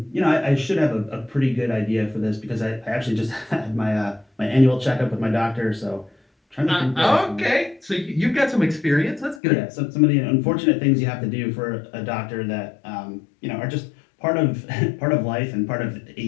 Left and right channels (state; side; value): drops out; right; at 9.4 s